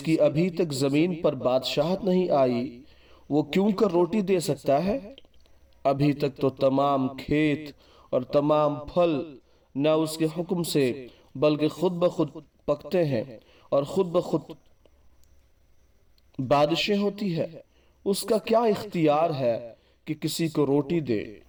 کی ابھی تک زمین پر بادشاہت نہیں آئی وہ کیوں کر روٹی دے سکتا ہے؟ ابھی تک تو تمام کھیت اور تمام پھل نہ اس کے حکم سے بلکہ خود بخود پکتے ہیں اور خود بخود بارشیں ہوتی ہے۔ اس کا کیا اختیار ہے کہ کسی کو روٹی دے؟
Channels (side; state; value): both; identical; correlation 1.00